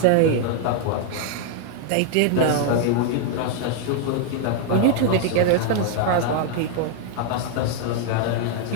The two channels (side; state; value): both; different; correlation 0.00